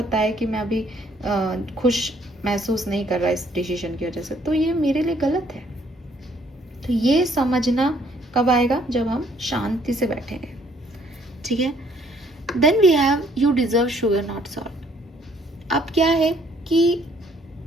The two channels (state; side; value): normal; both; correlation 0.64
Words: है कि मैं अभी खुश महसूस नहीं कर रहा इस डिसीजन की वजह से, तो ये मेरे लिए गलत है। तो ये समझना कब आएगा? जब हम शांति से बैठेंगे, ठीक है? Then we have you deserve sugar not salt. अब क्या है कि